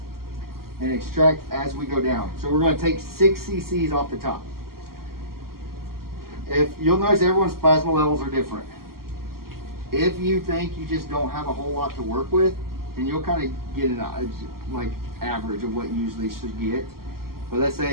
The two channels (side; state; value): left; late; 0.93 ms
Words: and extract as we go down. So we're going to take 6 cc's off the top. If you'll notice, everyone's plasma levels are different. If you think you just don't have a whole lot to work with, and you'll kind of get an like average of what you usually should get. But let's